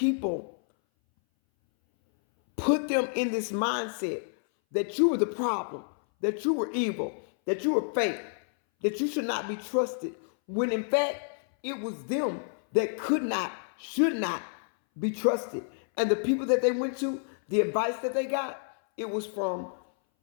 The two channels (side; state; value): right; silent; 58 dB below the other